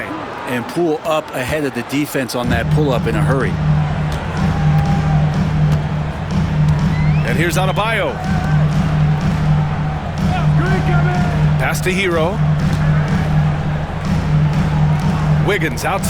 And Poole up ahead of the defense on that pull-up in a hurry. And here's Adebayo. Pass to Hero. Wiggins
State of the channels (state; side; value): identical; both; correlation 1.00